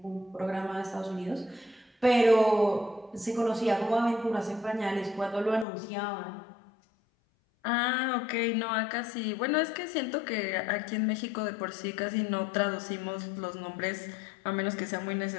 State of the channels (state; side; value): drops out; right; at 5.7 s